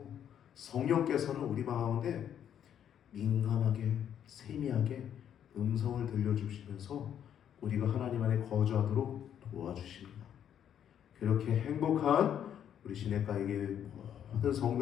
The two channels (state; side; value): quieter; right; 9.5 dB